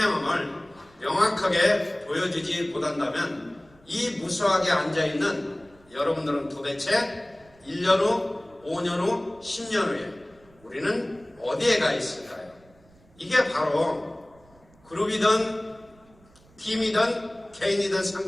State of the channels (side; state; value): right; noise; rumble, 28 dB below the sound